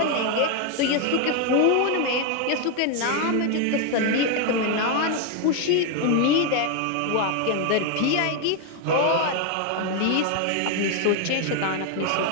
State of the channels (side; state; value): both; different; correlation 0.01